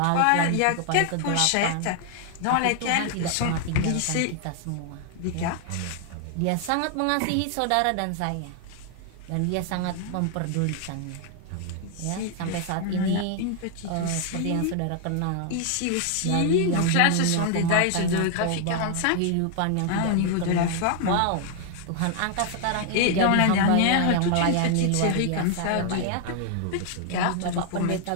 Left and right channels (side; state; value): both; different; correlation 0.00